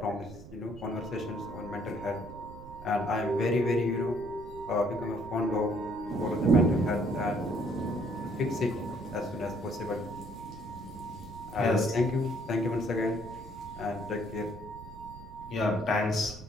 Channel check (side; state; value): right; noise; rumble, 15 dB below the sound